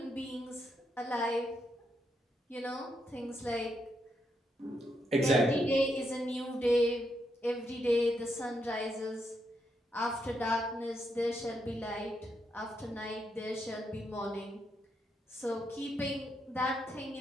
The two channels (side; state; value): both; normal; correlation 0.80